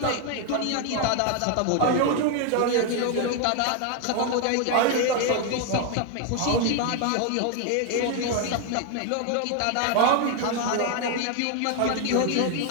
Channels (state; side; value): different; both; correlation 0.01